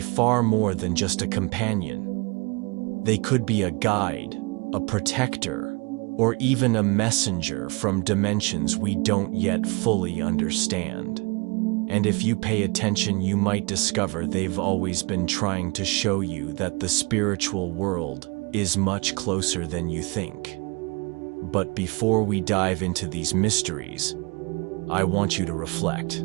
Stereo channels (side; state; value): left; quieter; 29.0 dB